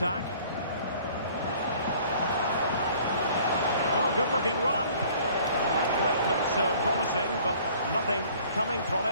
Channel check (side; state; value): both; inverted; correlation -0.53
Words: Oh, good-looking run. That break looked so promising, but nothing coming from